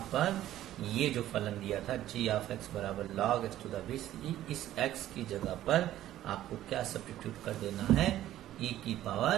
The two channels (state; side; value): quieter; left; 13.3 dB